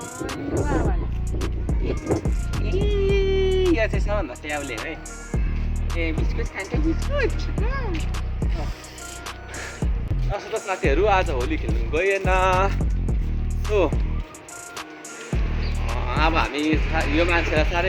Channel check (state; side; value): identical; both; correlation 1.00